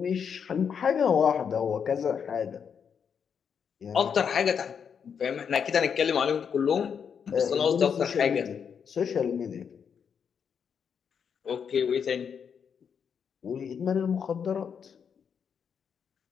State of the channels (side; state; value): right; quieter; 7.1 dB